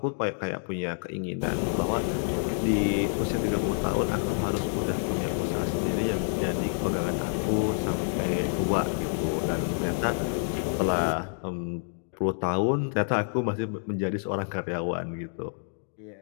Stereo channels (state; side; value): silent; right; digital silence